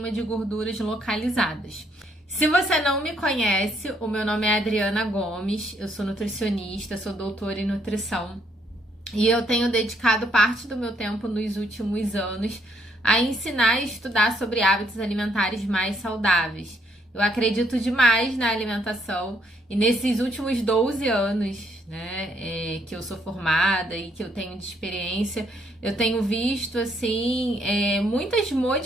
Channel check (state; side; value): normal; both; correlation 0.71